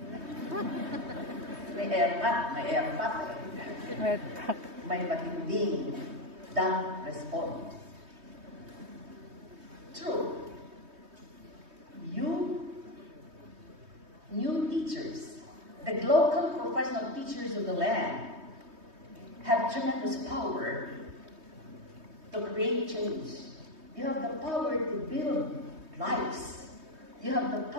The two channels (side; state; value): left; late; 3.2 ms